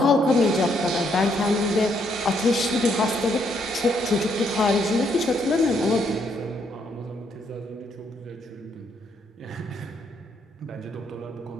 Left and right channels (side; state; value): both; normal; correlation 0.73